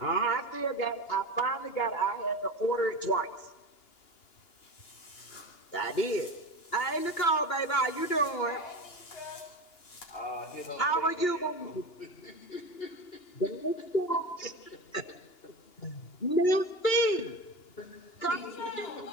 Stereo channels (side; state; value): right; late; 2.8 ms